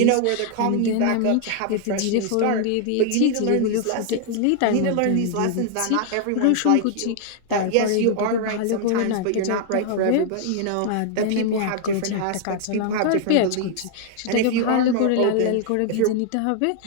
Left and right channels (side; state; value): both; different; correlation 0.00